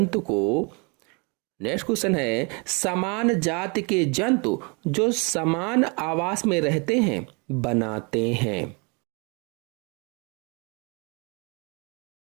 को, नेक्स्ट क्वेश्चन है, समान जाति के जंतु जो समान आवास में रहते हैं बनाते हैं।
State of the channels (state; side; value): quieter; left; 32.3 dB